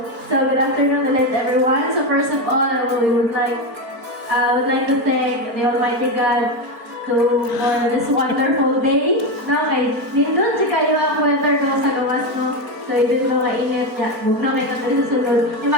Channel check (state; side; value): late; left; 4.4 ms